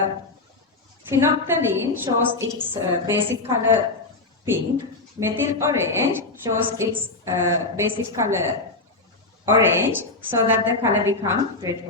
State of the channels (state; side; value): quieter; right; 3.3 dB